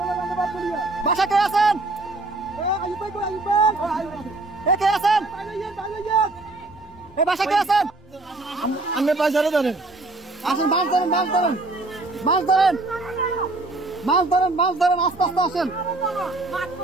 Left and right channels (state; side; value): quieter; left; 3.0 dB